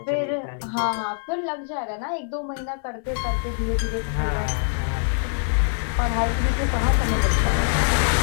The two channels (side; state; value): right; silent; digital silence